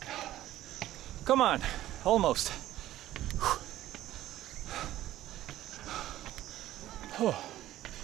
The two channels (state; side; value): quieter; left; 14.1 dB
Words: Come on, almost.